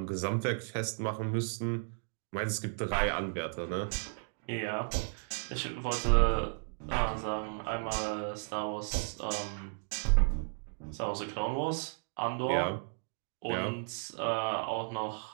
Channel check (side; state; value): left; silent; 55 dB below the other